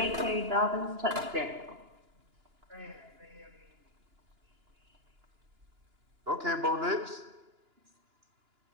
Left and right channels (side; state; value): left; late; 2.9 ms